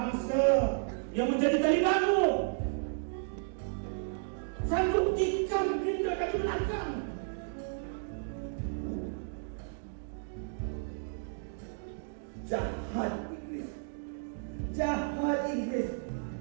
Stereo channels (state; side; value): silent; left; digital silence